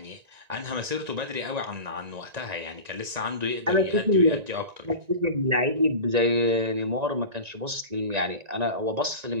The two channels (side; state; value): left; late; 1.9 ms